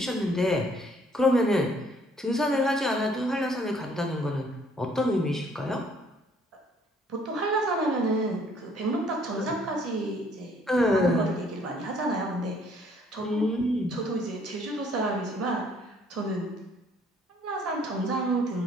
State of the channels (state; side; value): normal; both; correlation 0.62